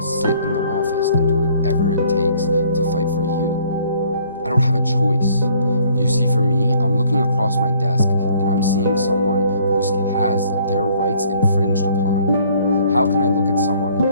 sit in the office and do whatever it takes to fight for you. I don't have a choice. You see, for me, I'm looking across my desk and I'm seeing someone who has their rights infringed upon. How can I look at someone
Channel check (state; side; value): inverted; both; correlation -0.60